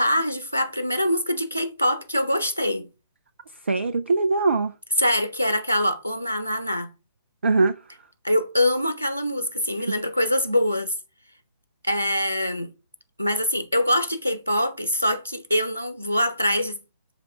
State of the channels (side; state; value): both; inverted; correlation -0.80